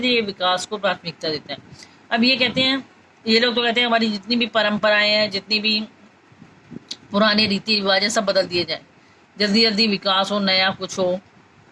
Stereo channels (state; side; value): identical; both; correlation 1.00